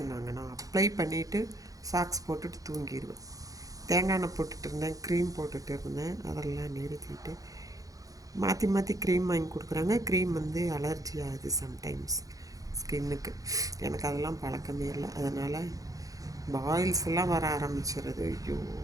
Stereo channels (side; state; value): left; late; 0.17 ms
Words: நான் அப்ளை பண்ணிவிட்டு சாக்ஸ் போட்டுட்டு தூங்கிடுவேன். தேங்காய் எண்ணெய் போட்டுட்டு இருந்தேன், க்ரீம் போட்டுட்டு இருந்தேன். அதெல்லாம் நிறுத்திட்டு மாற்றி மாற்றி க்ரீம் வாங்கி கொடுக்குறாங்க. க்ரீம் அலர்ஜி ஆகுது சம்டைம்ஸ் ஸ்கின்னுக்கு. எனக்கு அதெல்லாம் பழக்கமே இல்லை. அதனால் பாயில்ஸ் எல்லாம் வர ஆரம்பிச்சிருது. ஐயோ